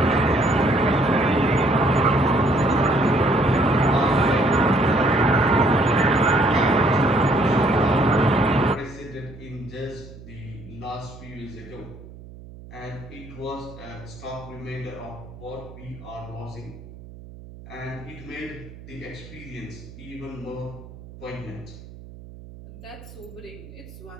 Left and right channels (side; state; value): right; noise; hum, 17 dB below the sound